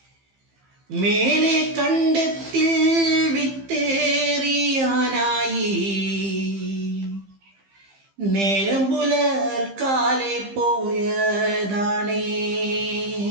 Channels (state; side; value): late; left; 15 ms